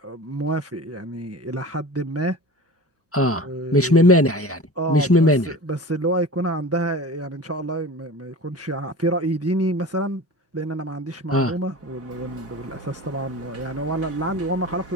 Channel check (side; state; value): both; normal; correlation 0.36